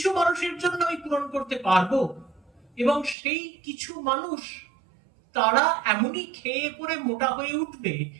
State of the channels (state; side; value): drops out; left; at 3.2 s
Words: মানুষের জন্য আমি পূরণ করতে পারবো, এবং সেই কিছু মানুষ তারা এমনই খেয়ে পড়ে মোটা হয়ে উঠবে,